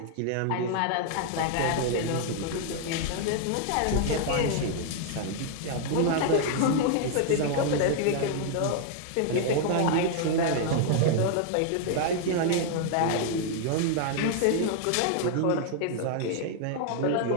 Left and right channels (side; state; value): both; different; correlation 0.00